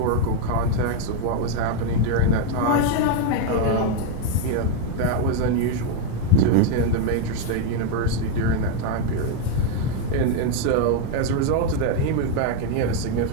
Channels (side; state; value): both; different; correlation 0.01